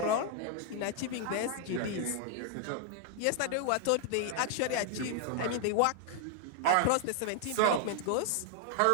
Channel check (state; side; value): different; both; correlation 0.00